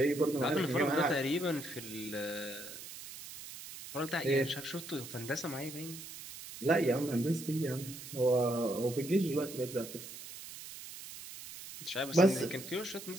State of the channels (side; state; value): right; noise; hiss, 12 dB below the sound